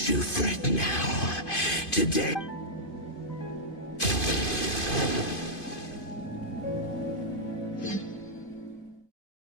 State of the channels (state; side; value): late; right; 2.5 ms